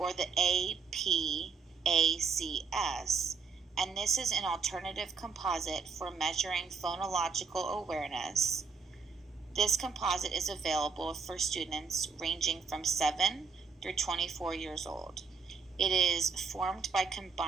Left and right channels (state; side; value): quieter; left; 5.2 dB